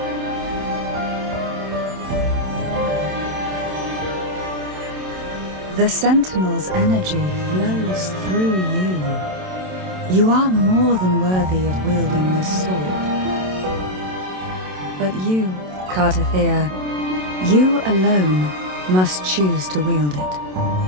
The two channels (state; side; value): late; left; 27 ms